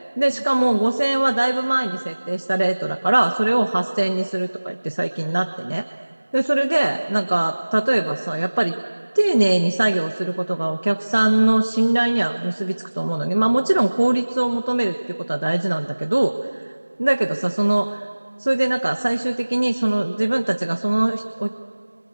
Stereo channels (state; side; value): inverted; both; correlation -1.00